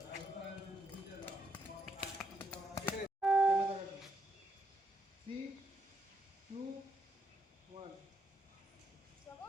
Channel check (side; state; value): both; normal; correlation 0.77